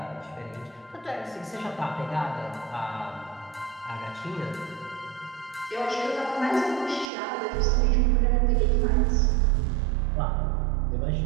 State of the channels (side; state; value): left; drops out; at 7.1 s